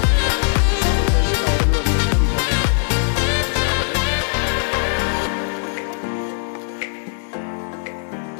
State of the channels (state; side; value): silent; right; 66 dB below the other